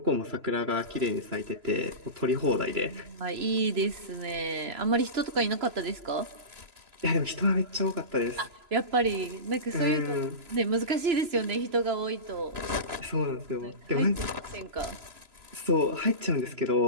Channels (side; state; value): left; late; 3.0 ms